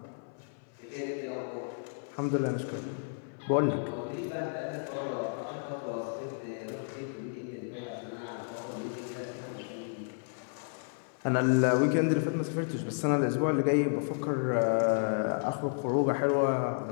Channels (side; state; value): right; silent; 56 dB below the other